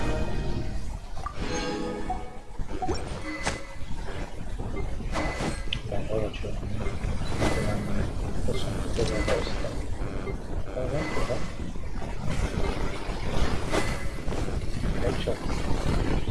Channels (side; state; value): both; identical; correlation 1.00